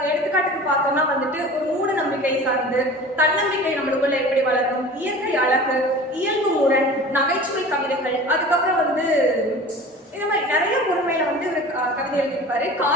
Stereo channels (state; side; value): normal; both; correlation 0.40